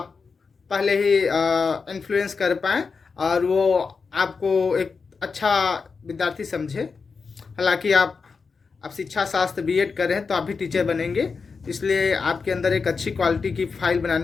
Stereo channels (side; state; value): right; quieter; 5.0 dB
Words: पहले ही इन्फ्लुएंस कर पाएँ और वो आपको एक अच्छा विद्यार्थी समझे। हालांकि आप शिक्षा शास्त्र B.Ed कर रहे हैं तो आप भी टीचर बनेंगे, इसलिए आपके अंदर एक अच्छी क्वालिटी की फाइल